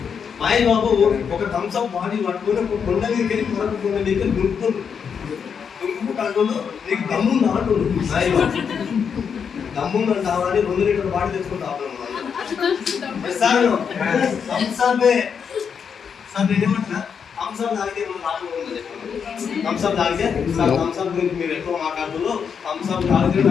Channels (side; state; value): right; quieter; 6.8 dB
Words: మహేష్ బాబు ఒక థమ్స్అప్ బాడీ పట్టుకొని ఒక కొండ మీదకి వెళ్ళి మరొక కొండ మీదకి దుంకుకుంటూ నీకు దమ్ముంది అంటుండు. మహేష్ బాబు దమ్ముందని కావాలి 2 లీటర్ల బాడీ తెచ్చుకుంటాను సార్. థమ్స్అప్ సార్ నేనేమంటున్నా, థమ్స్అప్ తాగితే ఏమన్నా లాభం ఉందని చెప్పండి. థమ్స్అప్ తాగితే సార్ థమ్స్అప్ గురించి మీరు ఎక్కువ మాట్లాడుతూ థమ్స్అప్ తాగితే